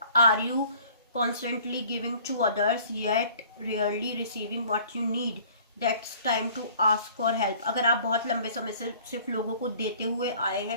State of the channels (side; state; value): both; inverted; correlation -0.52